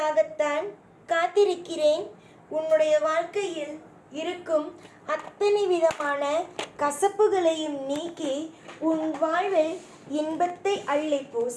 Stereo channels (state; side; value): identical; both; correlation 1.00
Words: காத்திருக்கிறேன். உன்னுடைய வாழ்க்கையில் இருக்கும் அத்தனை விதமான கசப்புகளையும் நீக்கி உன் வாழ்வில் இன்பத்தை அள்ளி